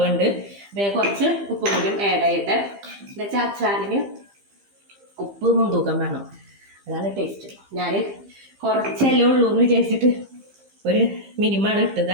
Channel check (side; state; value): left; late; 15 ms